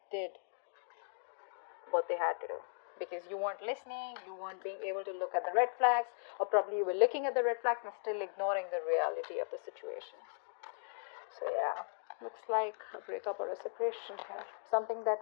did what they had to do. Because you weren't listening, you weren't being able to look at the red flags, or probably you were looking at the red flags and still ignoring the reality of the situation. So yeah, looks like a breakup or a separation here. Something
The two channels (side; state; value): right; silent; digital silence